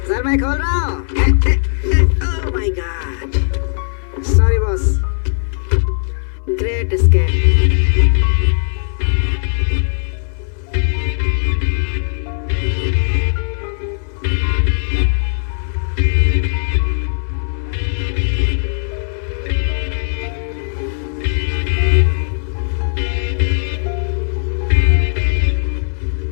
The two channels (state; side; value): silent; right; 61 dB below the other